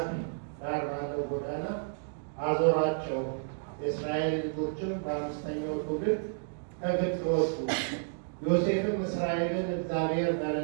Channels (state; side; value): silent; left; digital silence